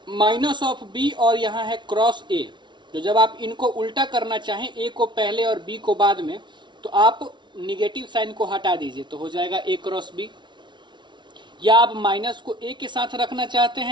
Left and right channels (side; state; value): left; late; 0.23 ms